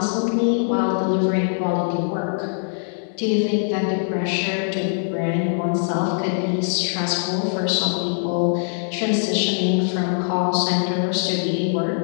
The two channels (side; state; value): right; silent; digital silence